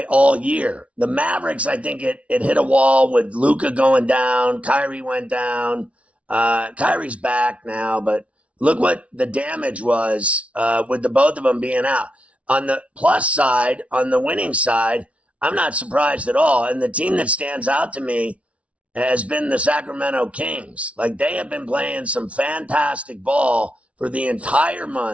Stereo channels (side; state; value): left; late; 0.063 ms